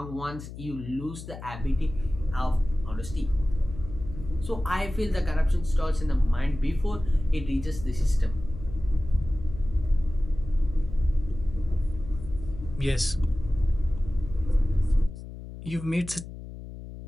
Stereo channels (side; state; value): left; noise; hum, 12 dB below the sound